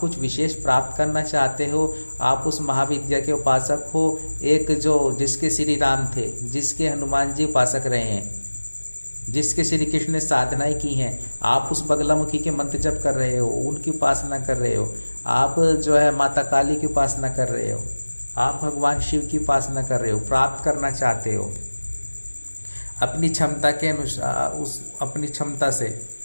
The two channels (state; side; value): inverted; both; correlation -1.00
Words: कुछ विशेष प्राप्त करना चाहते हो। आप उस महाविद्या के उपासक हो, एक जो जिसके श्री राम थे, जिसके हनुमान जी उपासक रहे हैं, जिसके श्री कृष्ण ने साधनाएं की हैं। आप उस बगलामुखी के मंत्र जप कर रहे हो, उनकी उपासना कर रहे हो। आप जो है माता काली की उपासना कर रहे हो, आप भगवान शिव की उपासना कर रहे हो, प्राप्त करना चाहते हो अपनी क्षमता के अनुसार, उस अपनी क्षमता से,